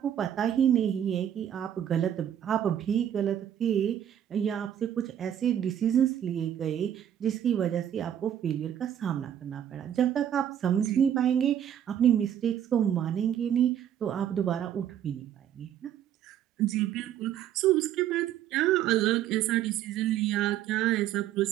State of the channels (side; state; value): left; quieter; 10.2 dB